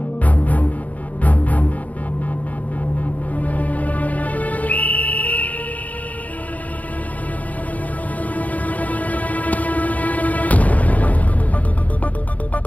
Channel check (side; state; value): right; late; 0.074 ms